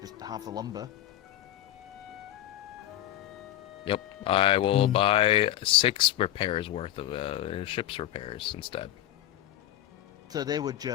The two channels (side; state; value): right; quieter; 13.5 dB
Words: just half the lumber. Yep. I will buy 6 repairs worth of ship's repairs instead. So they would